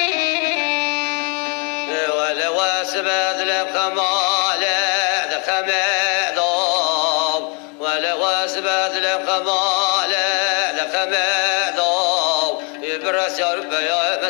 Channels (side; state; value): right; quieter; 35.1 dB